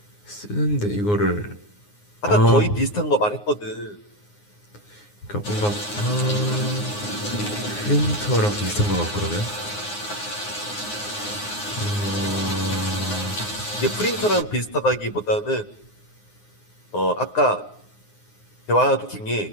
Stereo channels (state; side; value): late; right; 9.6 ms